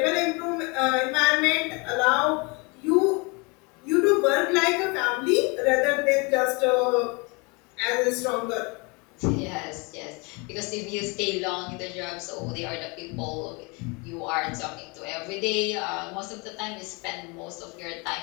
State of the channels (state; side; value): quieter; right; 29.7 dB